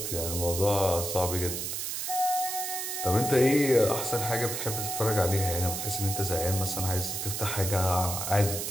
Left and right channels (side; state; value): right; noise; hiss, 3 dB below the sound